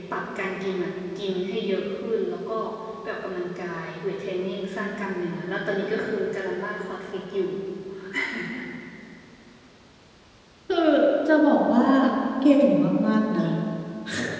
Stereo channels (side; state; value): both; identical; correlation 1.00